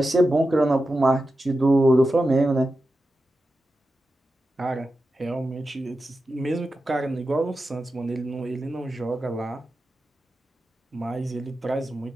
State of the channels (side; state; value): both; normal; correlation 0.91